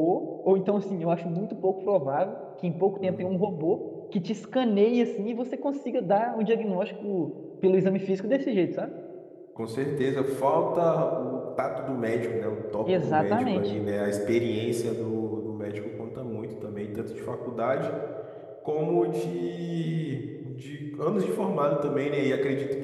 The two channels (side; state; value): both; identical; correlation 1.00